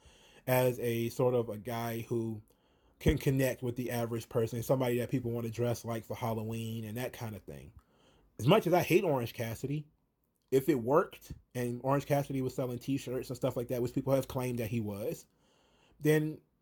as a sort of a guy who can connect with the average person, somebody that people want to dress like for Halloween and that kind of thing. As much as I hate Orange Cassidy, if it worked and Orange Cassidy was selling t-shirts and stuff like that, which people have claimed that he was, then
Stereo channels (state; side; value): identical; both; correlation 1.00